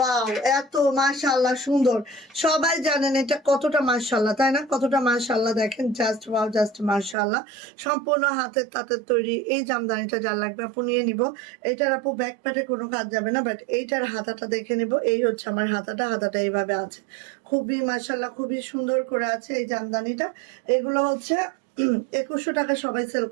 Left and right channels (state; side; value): drops out; left; at 7.2 s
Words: এত মাশাআল্লাহ সুন্দর, সবাই জানেন এটা কতটা মাশাআল্লাহ, তাই না, কতটা মাশাআল্লাহ, দেখেন জাস্ট ওয়াও, জাস্ট মাশাআল্লাহ। সম্পূর্ণ হাতের তাঁতের তৈরি এই জামদানিটা যার লাগবে আপু নিয়ে নিব। এটার আপু ব্যাক প্যাটে কোনো কাজ যাবে না, বাট এইটার হাতাটা দেখে নিব। এই হচ্ছে আমার হাতাটা এইভাবে আছে, খুবই মাশাআল্লাহ খুবই সুন্দর করে আছে এই জামদানিটা। এগুলো হচ্ছে 2100 টাকা সবাই সেল